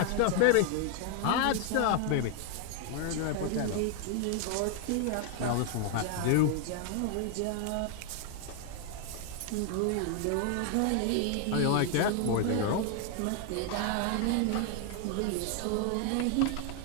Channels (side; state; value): both; different; correlation 0.00